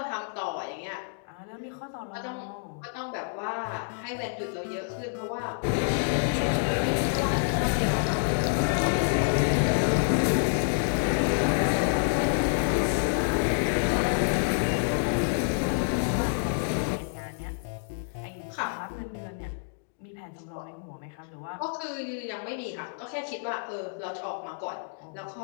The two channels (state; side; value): silent; right; digital silence